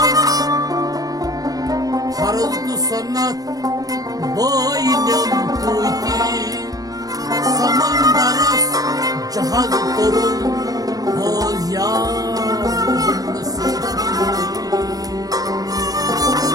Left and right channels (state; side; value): late; left; 0.18 ms